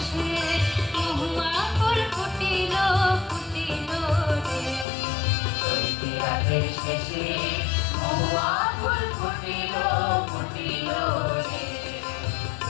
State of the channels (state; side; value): drops out; right; at 4.9 s